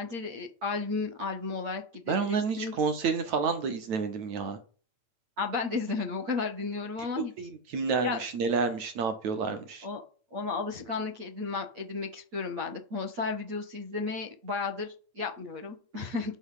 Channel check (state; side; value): late; left; 9.1 ms